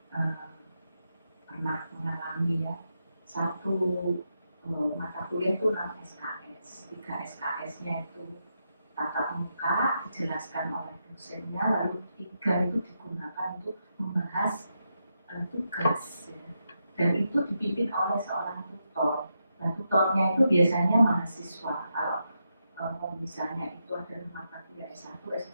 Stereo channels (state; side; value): inverted; both; correlation -0.84